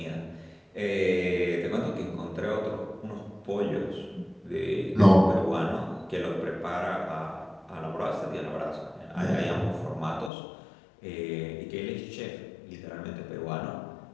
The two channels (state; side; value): drops out; right; at 10.3 s